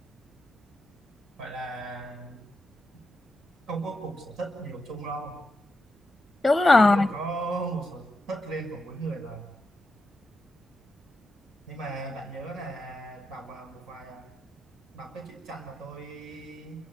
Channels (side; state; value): both; normal; correlation 0.87